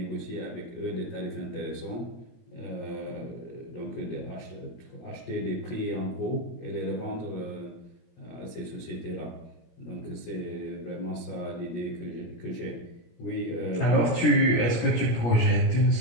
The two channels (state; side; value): late; right; 17 ms